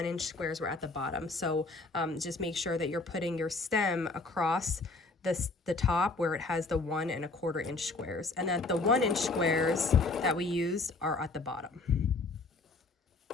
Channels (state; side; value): quieter; right; 3.5 dB